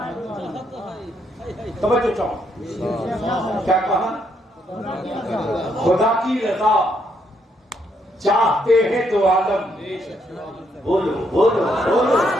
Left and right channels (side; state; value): both; normal; correlation 0.74